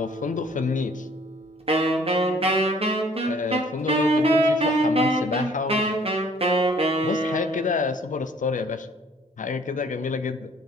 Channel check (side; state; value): both; normal; correlation 0.58